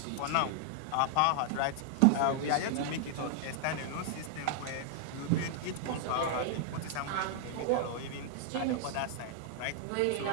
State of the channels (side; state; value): both; different; correlation -0.01